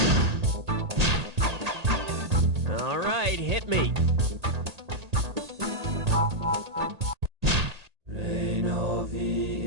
All right, hit me. Reinovi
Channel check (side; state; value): left; late; 1.8 ms